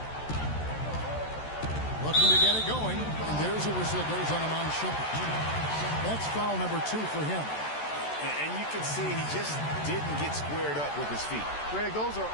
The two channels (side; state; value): right; late; 14 ms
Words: Looking to get it going, and there's a whistle that goes on him on Shumpert. That's foul number 2 for him. And you can see he just didn't get squared up with his feet. Greg, those are